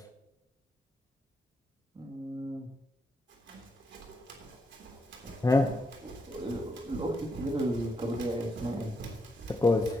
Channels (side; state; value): both; normal; correlation 0.80